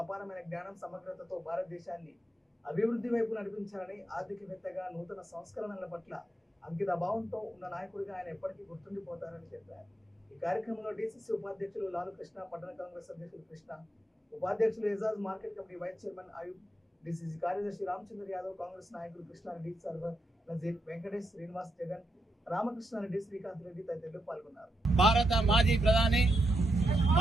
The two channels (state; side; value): normal; both; correlation 0.83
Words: అపారమైన జ్ఞానం సమగ్రతతో భారతదేశాన్ని అభివృద్ధి వైపు నడిపించాలని, ఆర్థికవేత్తగా నూతన సంస్కరణల పట్ల అంకిత భావంతో ఉన్న నాయకుడిగా ఆయన ఎప్పటికీ గుర్తుండిపోతారని చెప్పారు. ఈ కార్యక్రమంలో డీసీసీ ఉపాధ్యక్షులు లాలు కృష్ణ, పట్టణ కాంగ్రెస్ అధ్యక్షులు కృష్ణ, ఉపాధ్యక్షులు Ejaz, market committee vice chairman Ayub, DCC కార్యదర్శి రామచంద్ర యాదవ్, కాంగ్రెస్ నాయకులు కృష్ణారెడ్డి, సర్వర్ నజీర్, వెంకటేష్, శ్రీనివాస్, జగన్, రామకృష్ణారెడ్డి, శ్రీకాంత్ రెడ్డి తదితరులు పాల్గొన్నారు. భారత మాజీ ప్రధాని